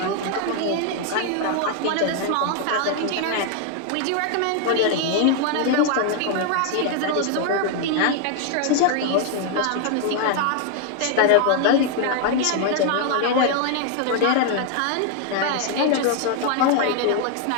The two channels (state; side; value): different; both; correlation 0.00